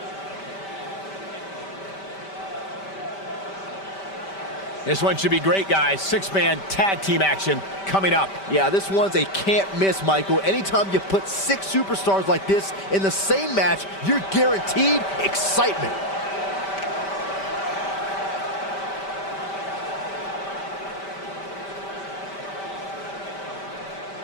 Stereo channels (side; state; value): right; late; 5.1 ms